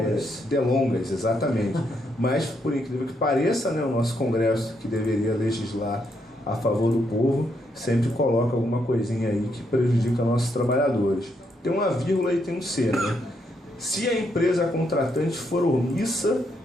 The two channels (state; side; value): normal; both; correlation 0.77